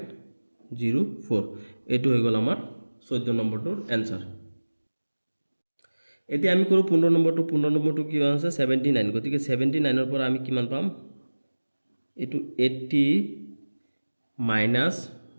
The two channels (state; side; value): inverted; both; correlation -1.00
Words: এটো হৈ গল আমাৰ 14 নম্বৰটোৰ आंसर এতিয়া আমি কৰো 15 নম্বৰটো কি আছে 79 গতিকে 79 ৰ পৰা আমি কিমান পাম এটো 80 minus